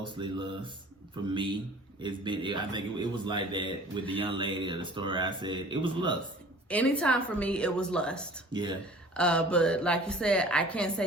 lust for me. I think it was like that with the young lady of the story I said. It was lust. Anytime for me, it was lust. Yeah. But like you said, I can't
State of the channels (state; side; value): normal; both; correlation 0.46